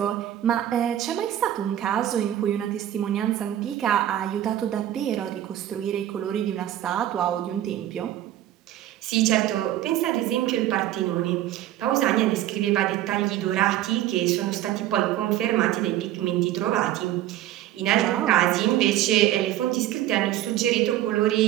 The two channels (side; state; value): left; quieter; 12.8 dB